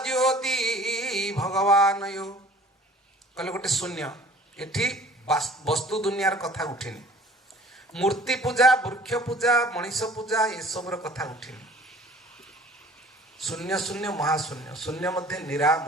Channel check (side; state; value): both; normal; correlation 0.49